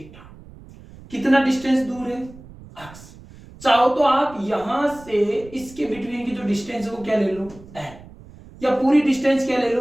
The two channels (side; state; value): right; noise; rumble, 20 dB below the sound